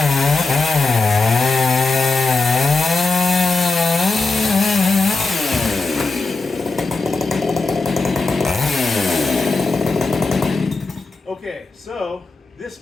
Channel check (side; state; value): right; quieter; 3.8 dB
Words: Okay, so this